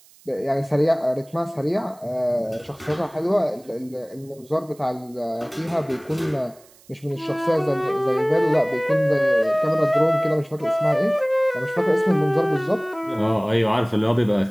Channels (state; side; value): noise; right; hiss, 27 dB below the sound